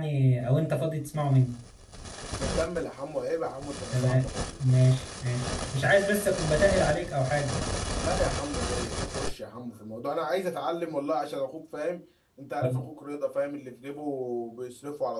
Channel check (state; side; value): identical; both; correlation 1.00